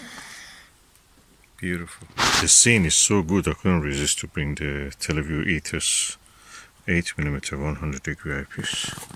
Beautiful. The scene is so good I couldn't resist to bring the Televue Ethos 8mm 100-degree eyepiece.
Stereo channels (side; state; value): both; identical; correlation 1.00